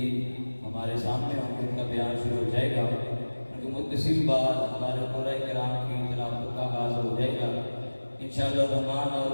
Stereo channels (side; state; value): both; inverted; correlation -1.00